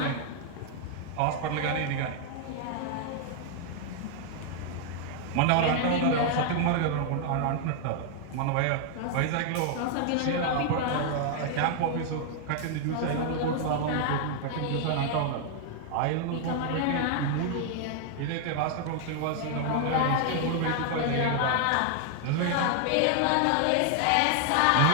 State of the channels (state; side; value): different; both; correlation 0.00